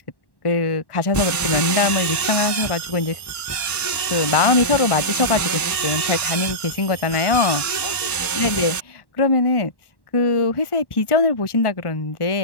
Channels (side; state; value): right; late; 1.1 ms